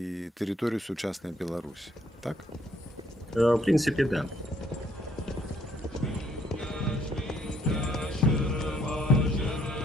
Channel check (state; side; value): normal; both; correlation 0.67